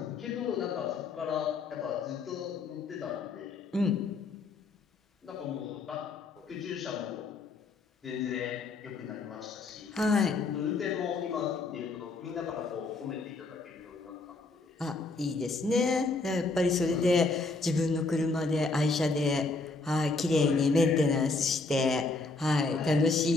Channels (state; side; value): quieter; right; 3.7 dB